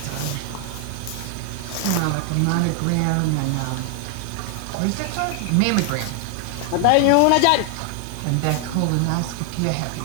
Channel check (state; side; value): different; both; correlation 0.00